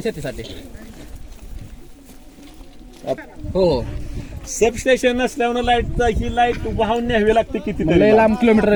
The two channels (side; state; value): both; identical; correlation 1.00